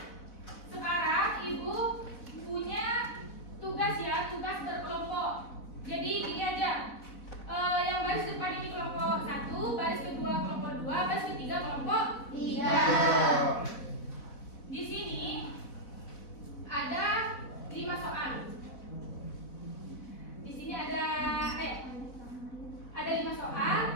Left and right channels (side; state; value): right; late; 4.0 ms